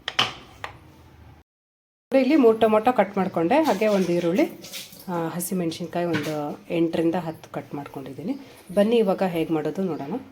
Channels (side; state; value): both; identical; correlation 1.00